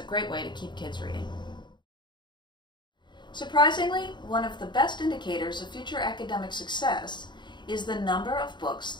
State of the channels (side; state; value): right; late; 0.22 ms